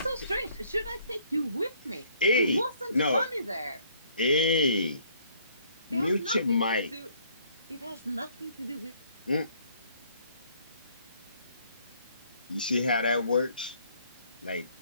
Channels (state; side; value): inverted; both; correlation -0.63